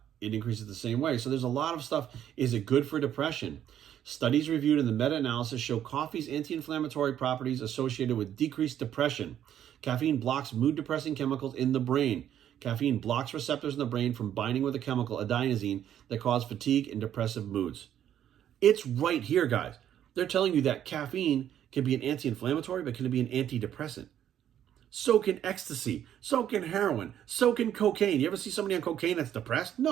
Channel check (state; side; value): quieter; left; 10.5 dB